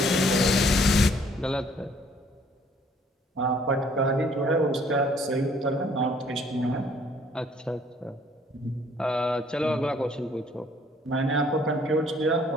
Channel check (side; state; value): both; normal; correlation 0.61